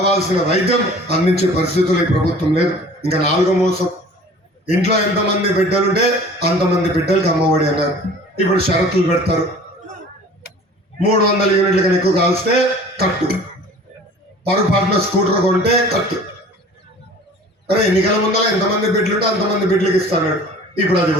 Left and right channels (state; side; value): normal; both; correlation 0.46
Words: వైద్యం అందించే పరిస్థితులు ఈ ప్రభుత్వం లేదు. ఇంకా నాలుగో మోసం. ఇంట్లో ఎంతమంది బిడ్డలుంటే అంతమంది బిడ్డలకి అమ్మఒడి అన్నారు. ఇప్పుడు షరతులు పెడతారు. 300 యూనిట్ల కన్నా ఎక్కువ కాల్స్తే కట్టు, పొరపాటున స్కూటర్ కొంటే కట్టు. అరే ఎన్నికల ముందర ఎంతమంది బిడ్డలుంటే అంతమంది బిడ్డలకి ఇస్తాడు. ఇప్పుడు అది